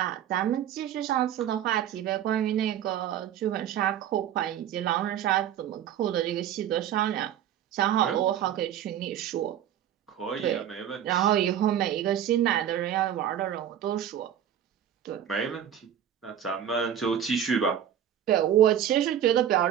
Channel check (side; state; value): left; quieter; 10.1 dB